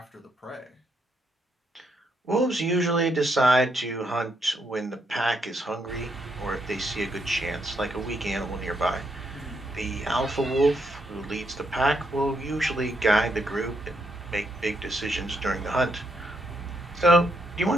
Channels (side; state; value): both; normal; correlation 0.78